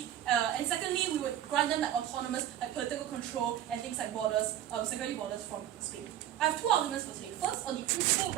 and secondly, we would grant them like autonomous, like political control and things like borders, security borders from Spain. I have two arguments for today. First, on the principal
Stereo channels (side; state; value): left; quieter; 11.6 dB